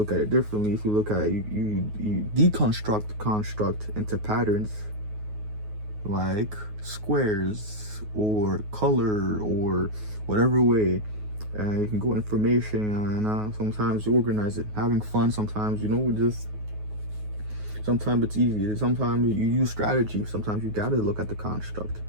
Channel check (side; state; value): left; late; 9.4 ms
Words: at it differently, if you look at it, you deconstruct the construct into patterns, like squares or color or whatever way. And you can go information, and sometimes you organize it, having fun. Sometimes, you know, sometimes it's easy. Sometimes you use strategy. Sometimes you gotta look at the construct.